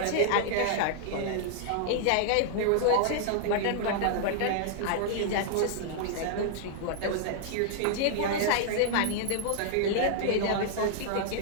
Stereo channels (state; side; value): different; both; correlation -0.01